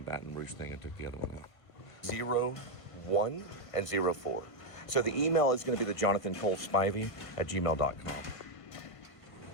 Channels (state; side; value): late; right; 1.5 ms